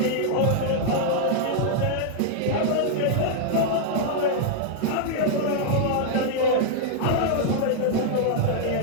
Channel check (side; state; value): both; different; correlation -0.01